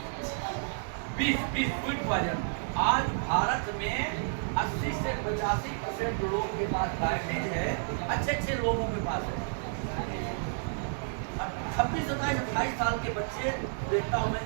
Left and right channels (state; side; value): silent; left; 57 dB below the other